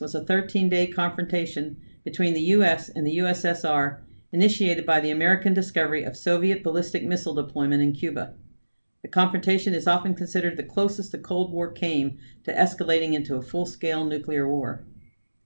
a 13-day confrontation between the U.S. and the USSR, initiated by the American discovery of Soviet ballistic missile deployment in Cuba. The confrontation is often considered the closest the Cold War came to escalating into a full-scale nuclear war.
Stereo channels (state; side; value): inverted; both; correlation -1.00